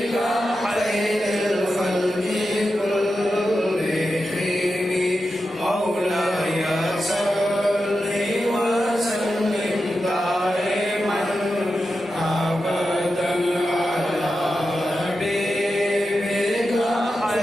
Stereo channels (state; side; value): normal; both; correlation 0.90